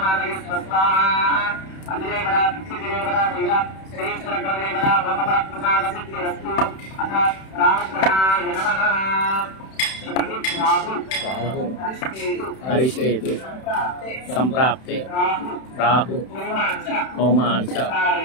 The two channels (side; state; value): right; late; 31 ms